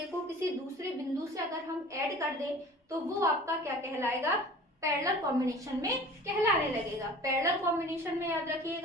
को किसी दूसरे बिंदु से अगर हम ऐड कर दें, तो वो आपका क्या कहलाएगा, पैरेलल कॉम्बिनेशन में कहलाने लगेगा। पैरेलल कॉम्बिनेशन में याद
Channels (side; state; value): both; normal; correlation 0.43